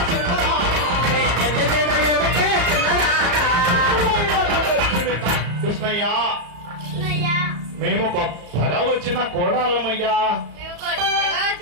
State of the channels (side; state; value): left; late; 34 ms